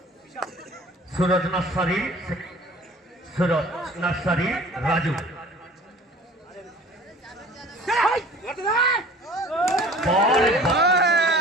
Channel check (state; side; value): normal; both; correlation 0.46